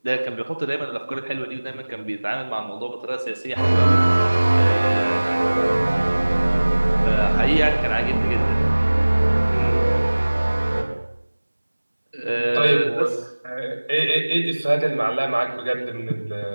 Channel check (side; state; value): both; inverted; correlation -1.00